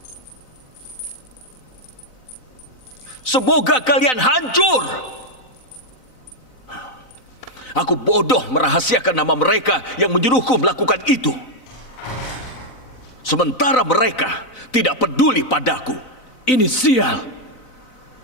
Semoga kalian hancur! Aku bodoh merahasiakan nama mereka yang menyuruhku melakukan itu. Sementara mereka tidak peduli padaku. Ini sial.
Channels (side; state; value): right; late; 4.0 ms